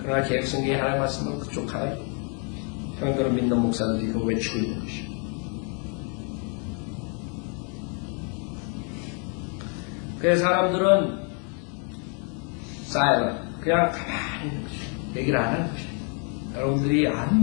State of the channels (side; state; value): right; quieter; 39.6 dB